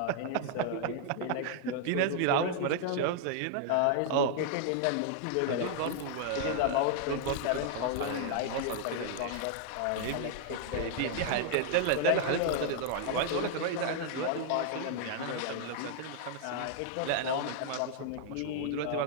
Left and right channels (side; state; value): both; different; correlation 0.00